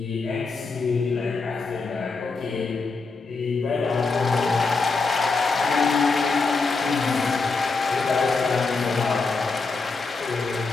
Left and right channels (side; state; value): right; quieter; 4.2 dB